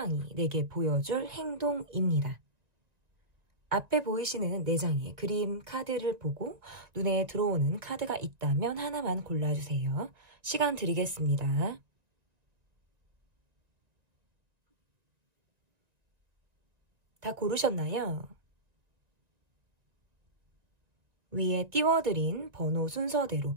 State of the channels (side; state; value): left; late; 1.9 ms